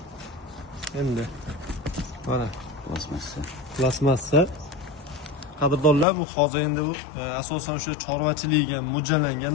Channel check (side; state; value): right; drops out; at 6.1 s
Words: Endi mana plasmassa. Qadrdonlar, bu hozir endi bu asosan o'sha chorvachilikga mo'ljallangan